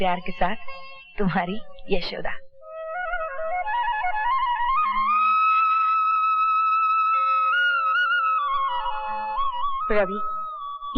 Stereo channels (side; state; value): both; identical; correlation 1.00